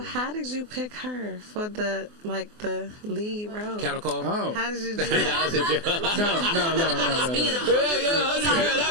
how did you pick her for the lead role? Cattle call? Oh. How did you do that? No. That'd be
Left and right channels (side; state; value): left; late; 24 ms